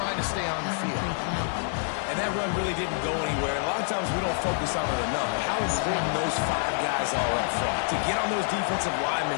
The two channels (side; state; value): right; silent; 56 dB below the other